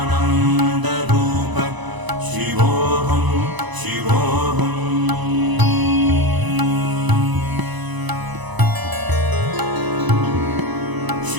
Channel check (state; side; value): late; left; 1.0 ms